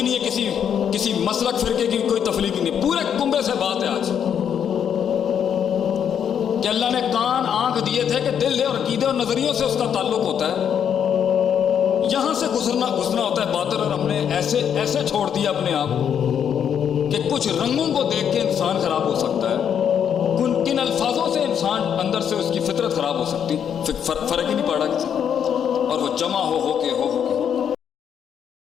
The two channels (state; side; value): quieter; right; 8.4 dB